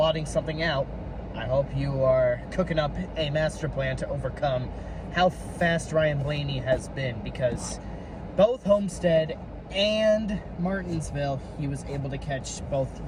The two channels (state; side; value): identical; both; correlation 1.00